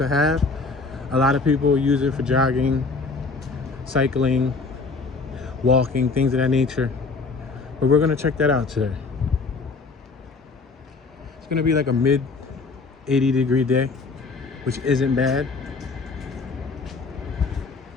have. A lot of people use it for jogging, cycling, walking, things of that nature. But we're gonna check that out today. It's gonna be like a mid 80-degree day, which isn't bad.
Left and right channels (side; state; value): right; quieter; 4.1 dB